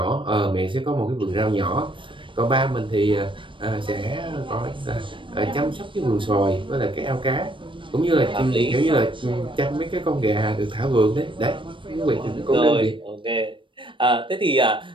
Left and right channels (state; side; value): late; left; 0.24 ms